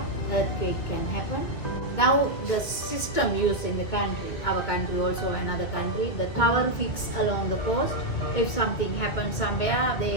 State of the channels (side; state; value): right; late; 2.7 ms